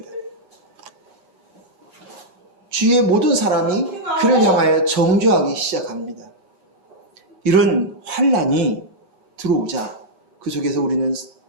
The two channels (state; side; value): late; left; 9.6 ms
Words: 주위의 모든 사람이 그를 향하여 정죄하기 시작합니다. 이런 환난이 들어오자 그 속에서 우리는